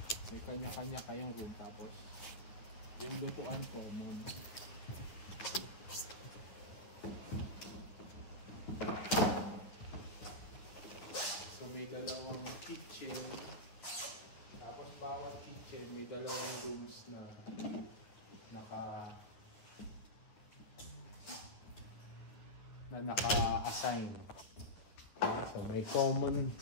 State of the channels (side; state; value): right; late; 9.9 ms